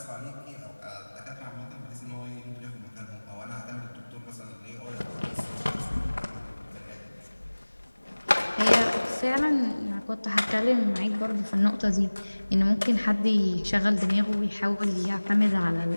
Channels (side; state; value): both; inverted; correlation -1.00